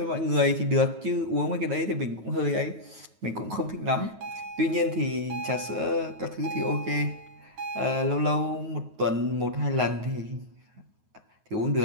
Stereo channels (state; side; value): late; left; 9.3 ms